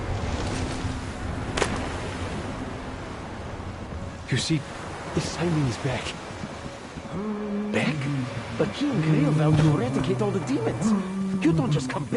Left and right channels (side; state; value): both; identical; correlation 1.00